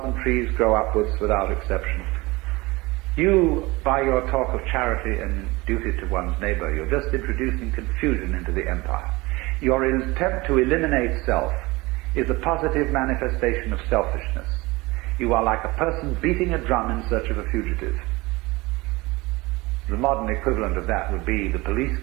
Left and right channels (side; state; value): left; quieter; 22.4 dB